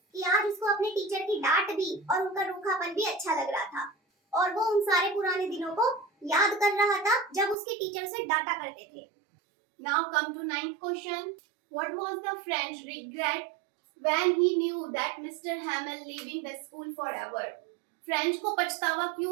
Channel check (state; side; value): drops out; left; at 7.6 s